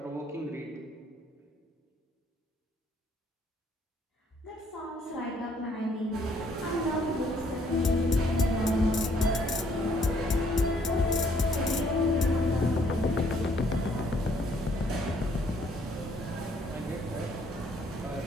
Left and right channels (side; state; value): both; normal; correlation 0.65